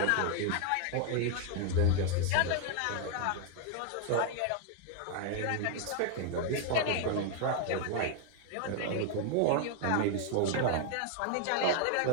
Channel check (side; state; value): both; different; correlation 0.00